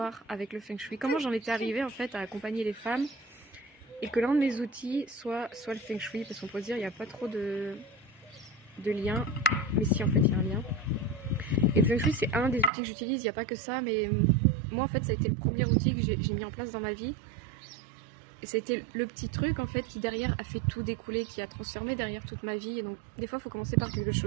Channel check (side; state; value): left; drops out; at 12.7 s